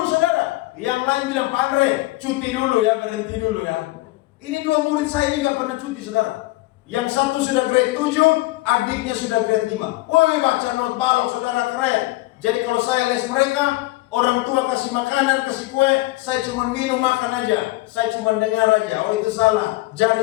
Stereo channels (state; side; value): quieter; right; 20.0 dB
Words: saudara. Yang lain bilang, Pak Andre, cuti dulu ya, berhenti dulu ya. Ini 2 murid saya ini gak pernah cuti saudara. Yang satu sudah grade 7, adiknya sudah grade 5. Woi, baca not balok saudara, keren. Jadi kalau saya les mereka, orang tua kasih makanan, kasih kue, saya cuma minum makan aja. Saya cuma dengar aja. Oh itu salah,